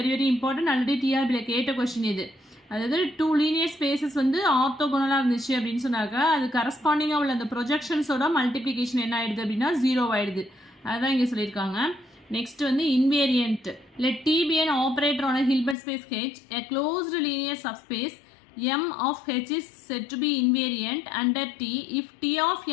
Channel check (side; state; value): right; drops out; at 15.8 s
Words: வெரி இம்பார்ட்டன்ட். ஆல்ரெடி டிஆர்பியில் கேட்ட கொஸ்டின் இது. அதாவது 2 லீனியர் ஸ்பேசஸ் வந்து ஆர்த்தோகோனலாக இருந்துச்சு அப்படின்னு சொன்னாக்கா அது கரஸ்பாண்டிங்காக உள்ள அந்த ப்ரொஜெக்ஷன்ஸோட மல்டிப்ளிகேஷன் என்ன ஆகிடுது அப்படின்னா 0 ஆகிடுது. அதுதான் இங்கே சொல்லியிருக்காங்க. நெக்ஸ்ட் வந்து invariant. Let T be an operator on a Hilbert space H, a closed linear subspace M of H is said to be invariant under T if T of